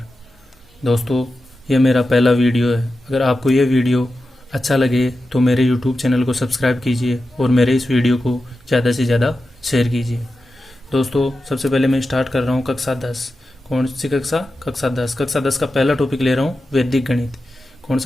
दोस्तों, यह मेरा पहला वीडियो है। अगर आपको यह वीडियो अच्छा लगे तो मेरे यूट्यूब चैनल को सब्सक्राइब कीजिए और मेरे इस वीडियो को ज़्यादा से ज़्यादा शेयर कीजिए। दोस्तों, सबसे पहले मैं स्टार्ट कर रहा हूँ कक्षा 10। कौन सी कक्षा? कक्षा 10। कक्षा 10 का पहला टॉपिक ले रहा हूँ वैदिक गणित। कौन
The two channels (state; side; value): normal; both; correlation 0.92